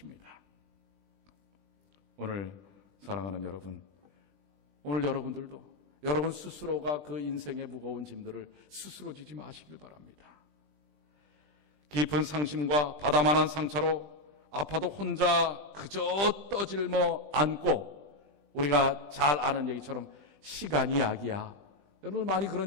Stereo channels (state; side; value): late; left; 20 ms